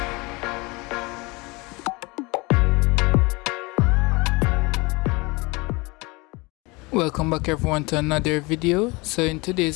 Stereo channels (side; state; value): right; quieter; 25.6 dB